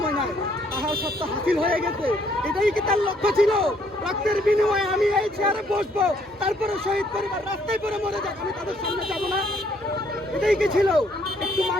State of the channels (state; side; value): normal; both; correlation 0.67